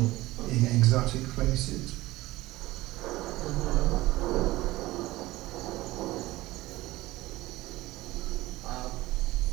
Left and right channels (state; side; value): quieter; left; 18.2 dB